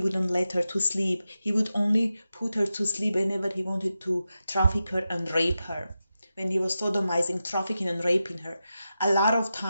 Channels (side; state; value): both; inverted; correlation -0.91